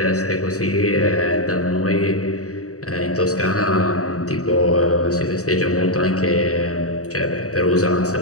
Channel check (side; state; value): right; late; 0.66 ms